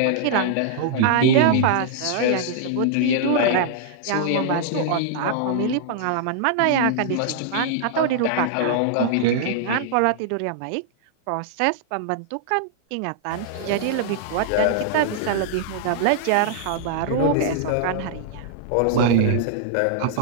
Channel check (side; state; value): both; different; correlation -0.01